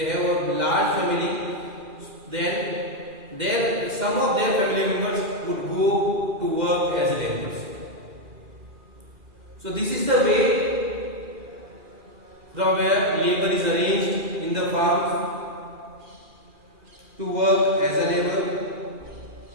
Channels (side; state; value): left; late; 2.4 ms